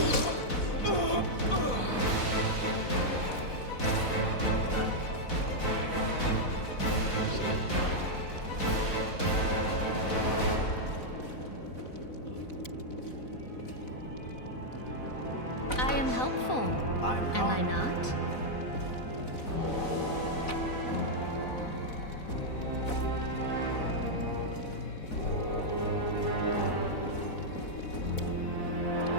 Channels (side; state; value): right; late; 4.0 ms